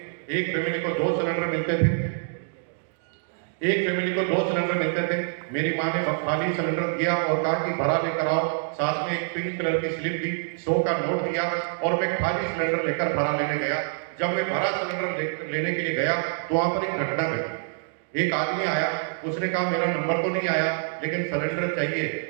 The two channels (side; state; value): left; silent; digital silence